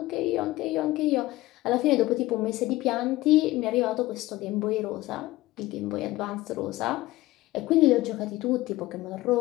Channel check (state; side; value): quieter; right; 17.8 dB